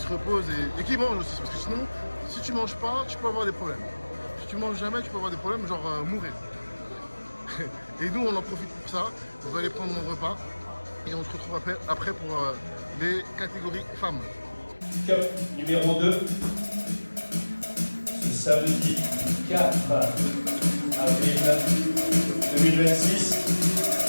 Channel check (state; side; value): inverted; both; correlation -1.00